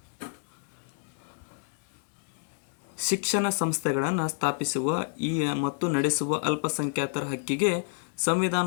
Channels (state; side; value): silent; right; digital silence